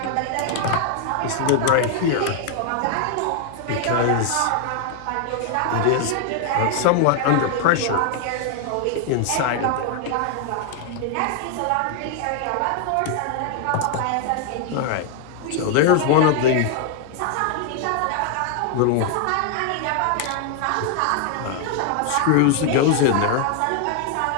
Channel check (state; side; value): different; both; correlation 0.00